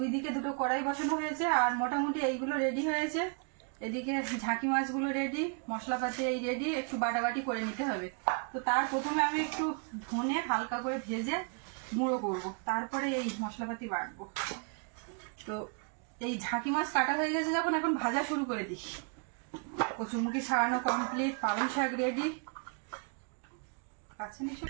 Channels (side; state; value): left; quieter; 39.9 dB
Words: দিকে দুটো কড়াই বসানো হয়েছে, আর মোটামুটি এইগুলো রেডি হয়েছে। এদিকে ঝাঁকি মাছগুলো রেডি, মশলাপাতি এই রেডি, একটু বাটাবাটি করে নিতে হবে। তো তার প্রথমে আমি একটু ধনে হালকা করে ভেজে গুঁড়ো করব, তারপরে এই মশলাপাতি বাটবো। তো এই ঝাঁকি মাছ কাটা হয়ে গেছে যখন, এখন ভাজা শুরু করে দিই। কচুরমুখী ছাড়ানো কমপ্লিট, পালং শাক রেডি। কাছে নিয়ে